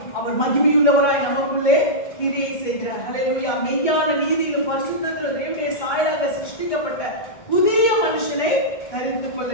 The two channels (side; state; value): right; late; 2.2 ms